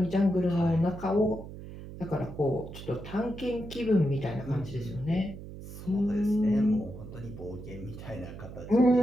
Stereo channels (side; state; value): right; noise; hum, 12 dB below the sound